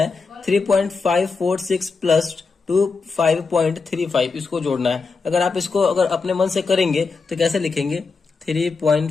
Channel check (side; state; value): right; quieter; 4.5 dB